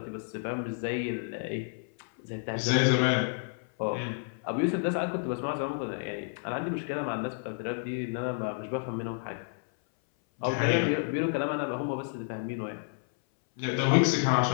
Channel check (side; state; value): right; silent; 58 dB below the other